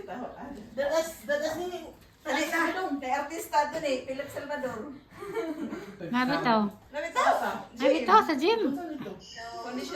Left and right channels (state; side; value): identical; both; correlation 1.00